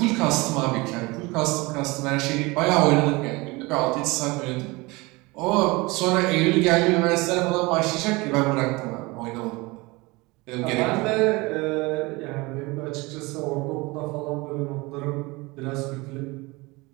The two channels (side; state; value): left; quieter; 23.9 dB